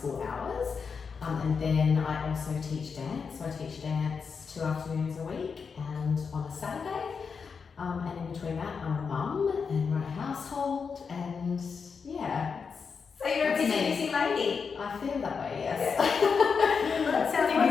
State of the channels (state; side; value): quieter; right; 5.7 dB